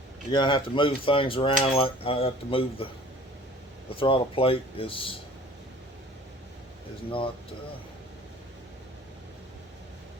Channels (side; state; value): both; normal; correlation 0.47